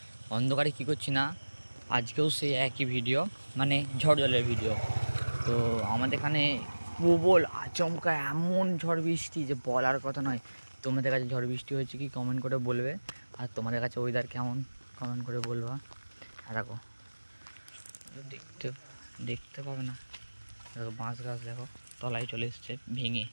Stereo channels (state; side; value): inverted; both; correlation -1.00